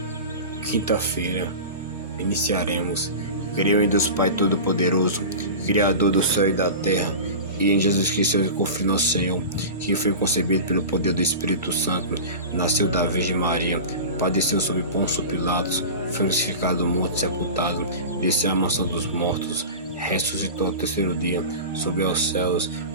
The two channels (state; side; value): inverted; both; correlation -0.31